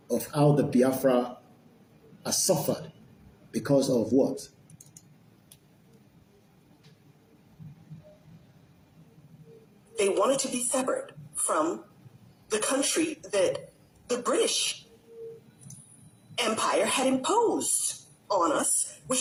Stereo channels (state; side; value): identical; both; correlation 1.00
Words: of how the Biafra has suffered because of what? They wanted to be separate from the country that the British Empire had imposed on us,